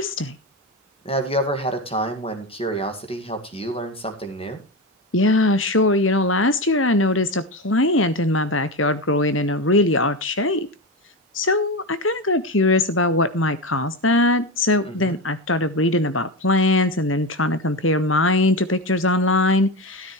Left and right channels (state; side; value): normal; both; correlation 0.18